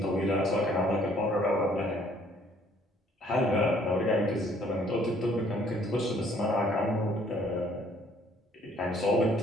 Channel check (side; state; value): both; normal; correlation 0.61